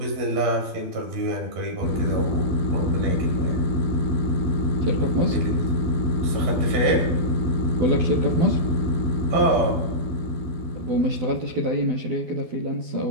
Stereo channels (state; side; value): late; left; 12 ms